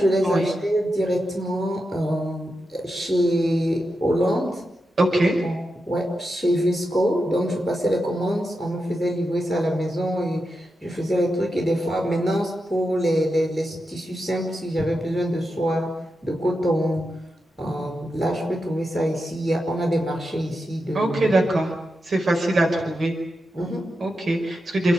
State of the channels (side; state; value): both; normal; correlation 0.88